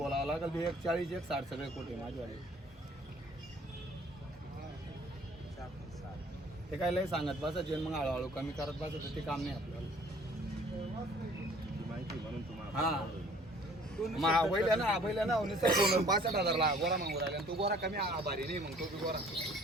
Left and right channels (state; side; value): normal; both; correlation 0.54